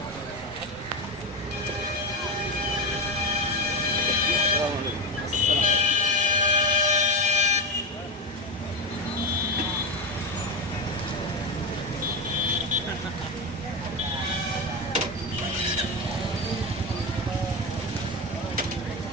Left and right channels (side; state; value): both; normal; correlation 0.16